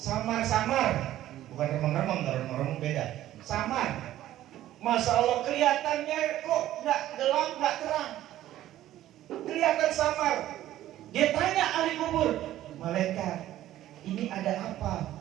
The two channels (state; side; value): quieter; left; 13.6 dB